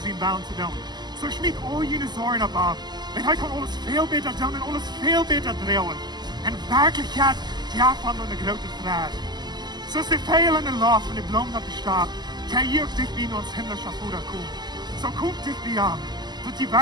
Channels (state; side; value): late; left; 0.21 ms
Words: baan te doen. So schmied al jene zorgen op af. En hij kan alles veel beter doen en alles veel beter draaien. En werkelijkheid, ja van een grote vraag. Zoals de veel en de lof van de bloem dat bestaat, kan je ook dicht bij ons himmlische Vader komen. Zo komt dicht bij aan, dat die